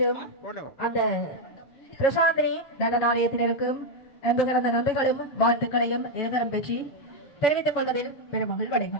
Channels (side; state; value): right; late; 7.0 ms